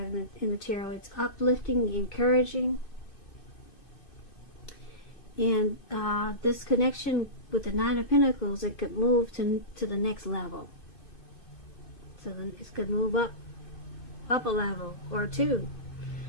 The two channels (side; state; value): right; late; 2.6 ms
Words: in the tarot. It's uplifting, encouraging. And this connection with the Nine of Pentacles, it could move to the next level. So then it could move up a level, or two,